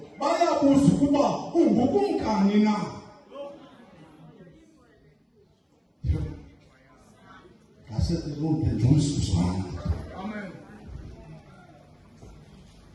bayabuza ukuba ungukumkani na. Amen.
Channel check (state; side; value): identical; both; correlation 1.00